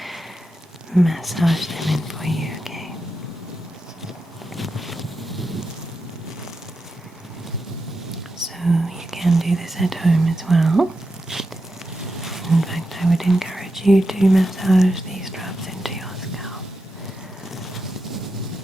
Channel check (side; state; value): both; normal; correlation 0.88